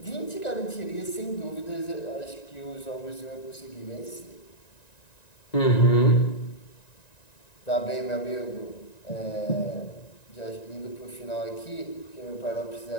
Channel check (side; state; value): right; late; 1.9 ms